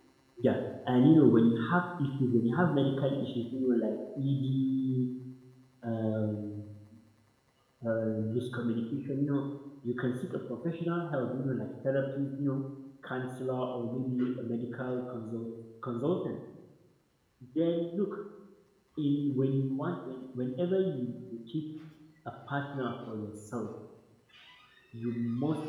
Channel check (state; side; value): identical; both; correlation 1.00